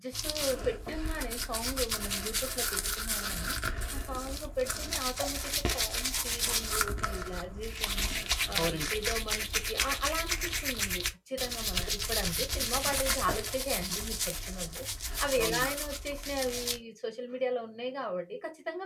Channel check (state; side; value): identical; both; correlation 1.00